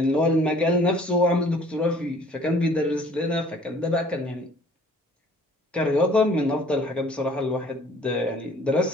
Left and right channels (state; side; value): normal; both; correlation 0.54